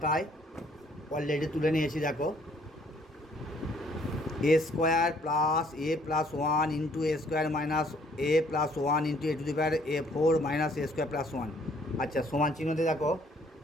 অলরেডি তুলে নিয়েছি। দেখো a square plus a plus one into A square minus a plus one into a to the power a four minus a square plus one. আচ্ছা সমান চিহ্নতে দেখো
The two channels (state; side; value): normal; both; correlation 0.62